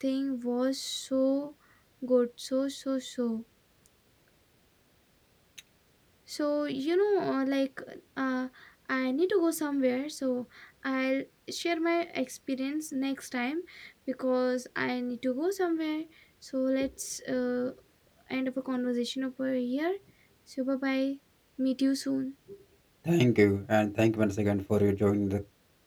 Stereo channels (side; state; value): both; identical; correlation 1.00